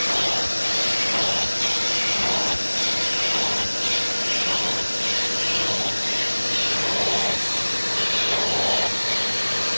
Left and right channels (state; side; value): inverted; both; correlation -1.00